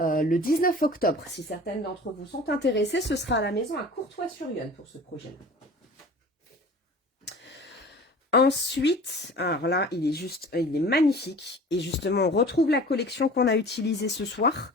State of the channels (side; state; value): both; normal; correlation 0.42